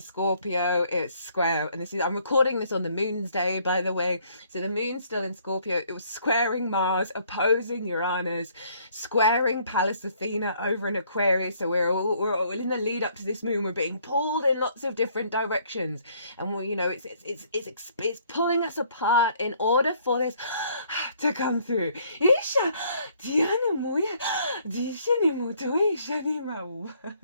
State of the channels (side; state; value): both; inverted; correlation -0.64